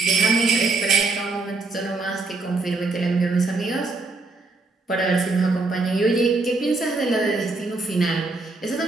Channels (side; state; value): left; quieter; 3.5 dB